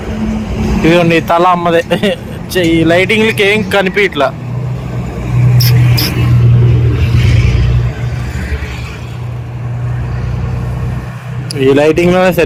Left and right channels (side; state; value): both; identical; correlation 1.00